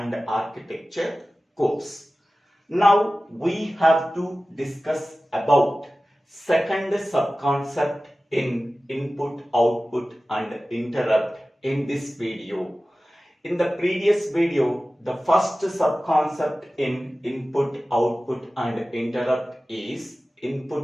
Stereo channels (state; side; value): normal; both; correlation 0.96